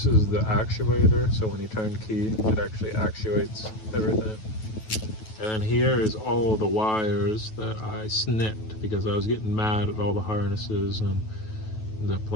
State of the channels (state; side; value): late; right; 9.3 ms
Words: is the actuator, so when you turn key, it actually actuates everything. And then here is all the wires that I snipped because I was getting mad at all the harnesses and the